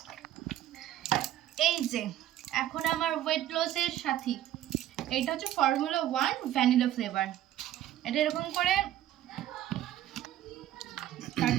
এই যে এখন আমার ওয়েট লসের সাথী, এটা হচ্ছে ফর্মুলা 1 ভ্যানিলা ফ্লেভার। এটা এরকম করে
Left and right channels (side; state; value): left; quieter; 12.7 dB